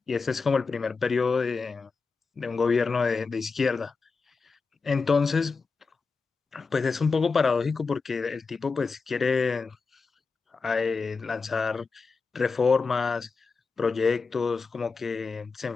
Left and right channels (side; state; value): right; quieter; 4.6 dB